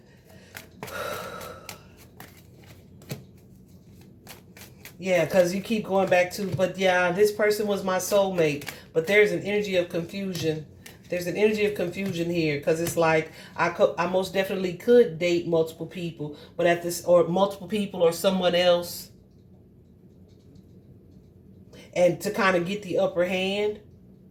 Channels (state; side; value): identical; both; correlation 1.00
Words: Yeah, because you keep going back to, but yeah, this person was my soulmate. But there's an energy of confusion. There's an energy of confusion here, because it's like I most definitely could date multiple people, but at this, or multiple people or someone else, and to kind of get the upper hand.